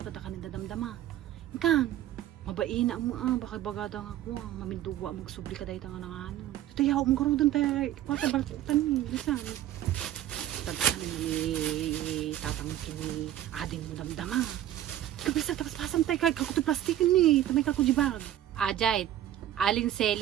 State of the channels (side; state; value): left; quieter; 12.3 dB